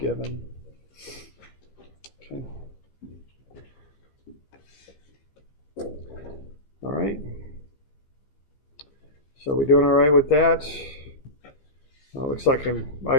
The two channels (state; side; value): late; right; 15 ms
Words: Okay. All right. So we doing all right with that? Looks like I